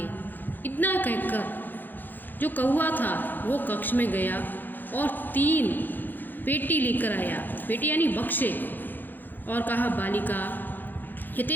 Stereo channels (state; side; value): late; right; 0.089 ms